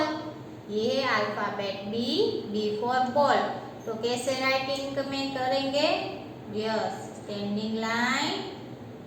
ये है अल्फाबेट बी फॉर बॉल. तो कैसे राइटिंग में करेंगे? Yes, standing line,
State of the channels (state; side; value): identical; both; correlation 1.00